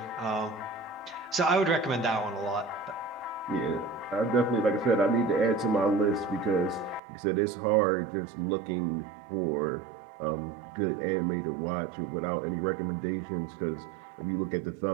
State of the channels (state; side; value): drops out; left; at 7.0 s